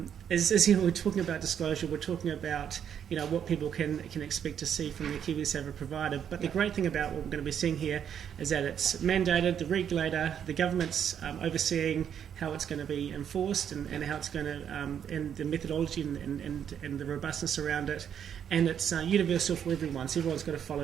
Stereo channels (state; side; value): quieter; left; 8.7 dB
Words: is we're talking about disclosure. We're talking about what people can expect to see from the KiwiSaver provider. But the great thing about what we're going to be seeing here is that it's mandated, the regulator, the government's overseeing how it's going to be enforced and how it's going to, and the methodology and the robustness around it. And it's universal for everyone, so everyone's got to